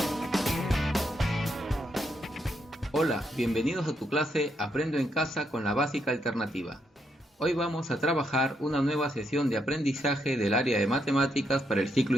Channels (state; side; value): normal; both; correlation 0.78